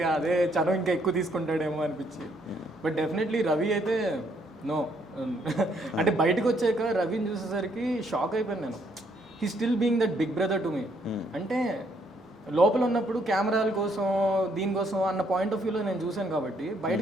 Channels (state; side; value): normal; both; correlation 0.70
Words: అదే చనువు ఇంకా ఎక్కువ తీసుకుంటాడేమో అనిపించి. బట్ డెఫినెట్లీ రవి అయితే నో. అంటే బయటకు వచ్చాక రవిని చూసేసరికి షాక్ అయిపోయాను నేను. He still being that big brother to me. అంటే లోపల ఉన్నప్పుడు కెమెరాల కోసం దీనికోసం అన్న పాయింట్ ఆఫ్ వ్యూలో నేను చూశాను కాబట్టి